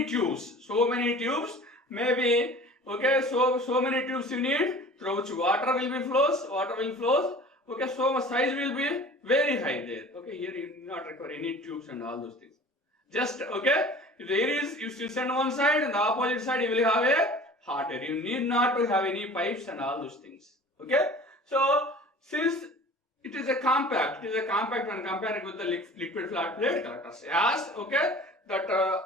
tubes, maybe, okay, so many tubes you need, through which water will flows, okay, so much size will be very high there. Okay, here you do not require any tubes and all those things. Just, okay, if there is, you still send one side and the opposite side you will have a hot air. You need not to have any pipes and all those things. Okay, so since it is a compact when compared with the liquid flat plate collectors. As, okay, that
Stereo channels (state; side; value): normal; both; correlation 0.43